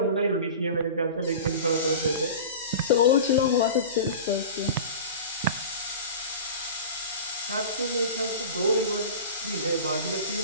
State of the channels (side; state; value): both; inverted; correlation -0.34